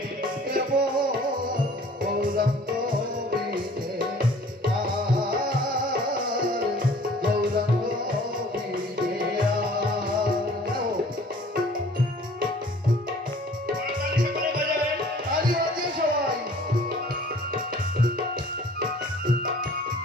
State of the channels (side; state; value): both; normal; correlation 0.51